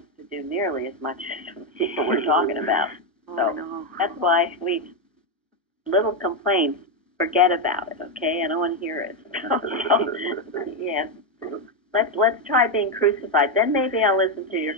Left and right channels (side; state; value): both; normal; correlation 0.06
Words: to do nearly as much as what we're talking about. So that's why we, little complaints, forget about it, okay? I don't want to hear it. Yeah. Let's try being crucified. Then maybe I'll listen to your